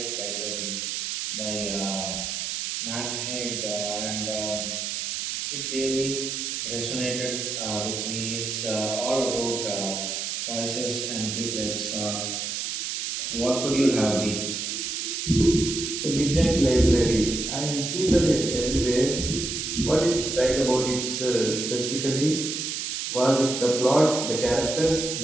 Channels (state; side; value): noise; right; hiss, 3 dB below the sound